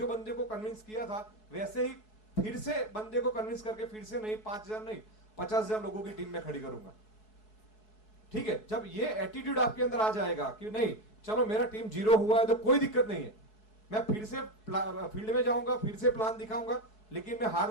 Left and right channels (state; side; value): late; right; 4.7 ms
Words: बंदे को कन्विंस किया था वैसे ही फिर से बंदे को कन्विंस करके फिर से नहीं 5000 नहीं 50,000 लोगों की टीम में खड़ी करूंगा, ठीक है। जब ये एटीट्यूड आपके अंदर आ जाएगा कि नहीं चलो मेरा टीम 0 हुआ है तो कोई दिक्कत नहीं है, मैं फिर से फील्ड में जाऊंगा, फिर से प्लान दिखाऊंगा, लेकिन मैं हार